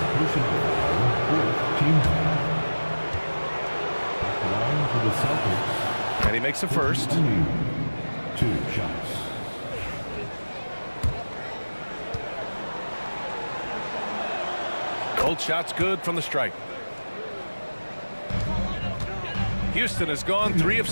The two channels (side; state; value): both; inverted; correlation -1.00